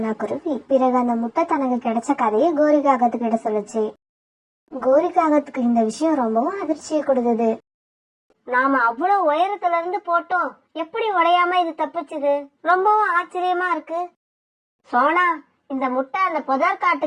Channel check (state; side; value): identical; both; correlation 1.00